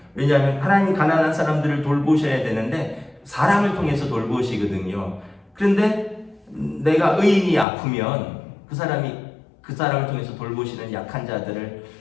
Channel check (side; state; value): right; drops out; at 7.7 s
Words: 왜냐하면 하나님이 가난한 사람들을 돌보셔야 되는데 사람을 통해서 돌보시거든요. 그런데 내가 의인이 아프면 그 사람을 통해서 돌보시는 약한 자들을